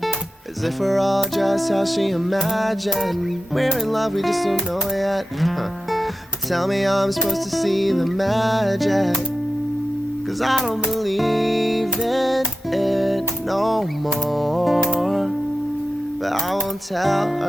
as if we're all just how she imagined. We're in love, we just don't know yet. Tell me how I'm supposed to see the magic, 'cause I don't believe in it no more. But I won't tell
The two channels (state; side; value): normal; both; correlation 0.92